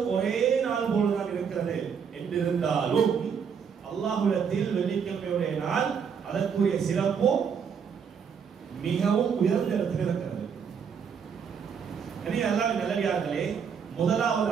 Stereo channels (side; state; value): left; quieter; 6.8 dB